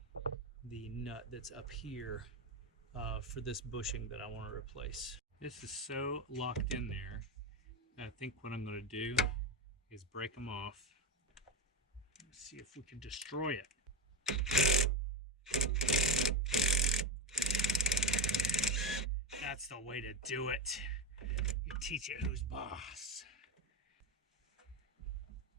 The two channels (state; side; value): normal; both; correlation 0.13